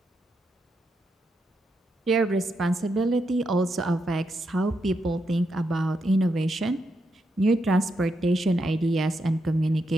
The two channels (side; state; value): both; normal; correlation 0.83